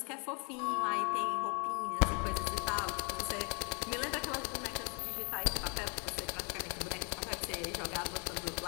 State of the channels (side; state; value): right; quieter; 34.2 dB